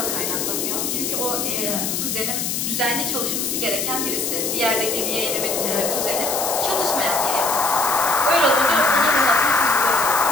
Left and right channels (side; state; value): left; noise; hiss, 1 dB below the sound